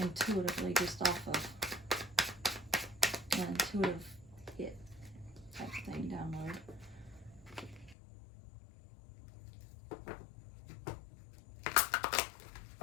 just off of an intuitive hit type thing download.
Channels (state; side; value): drops out; right; at 8.0 s